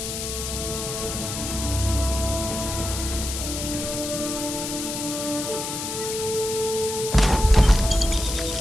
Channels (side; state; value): left; noise; hiss, 5 dB below the sound